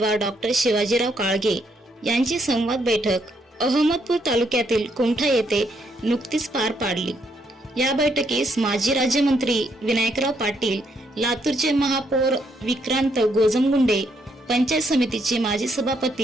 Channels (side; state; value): both; normal; correlation 0.74